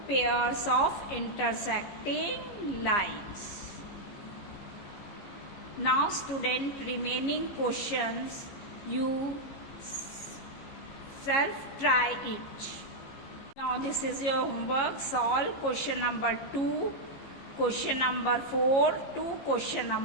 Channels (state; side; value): late; right; 15 ms